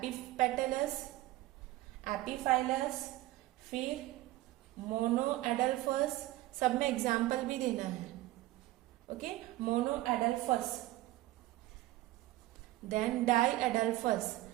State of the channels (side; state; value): left; quieter; 17.1 dB